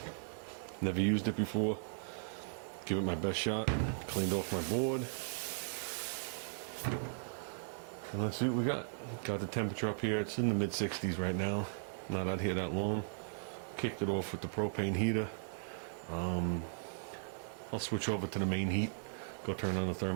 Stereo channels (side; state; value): left; silent; digital silence